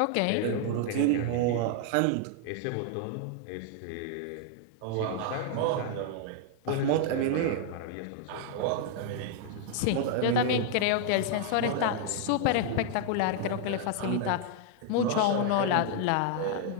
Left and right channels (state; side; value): different; both; correlation -0.01